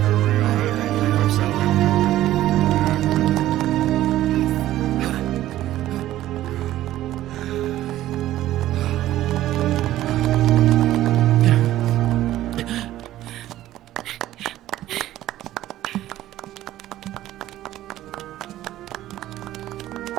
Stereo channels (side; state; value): left; quieter; 14.1 dB